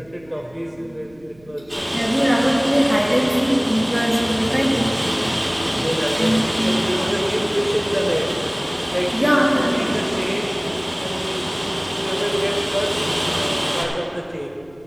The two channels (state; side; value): noise; right; rumble, 28 dB below the sound